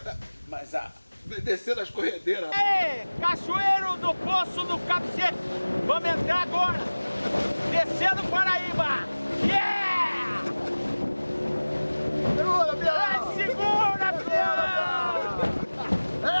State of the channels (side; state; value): both; inverted; correlation -1.00